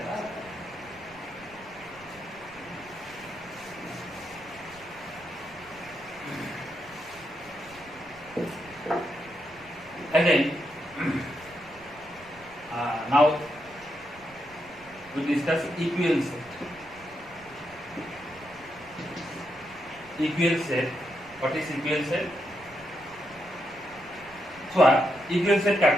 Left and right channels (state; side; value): noise; right; rumble, 24 dB below the sound